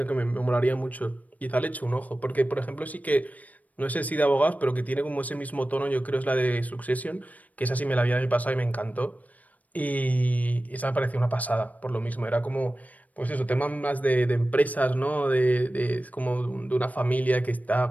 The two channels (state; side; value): late; right; 0.074 ms